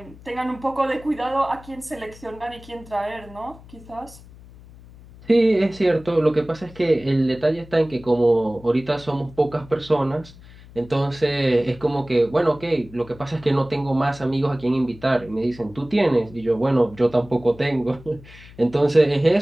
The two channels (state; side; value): noise; left; hum, 21 dB below the sound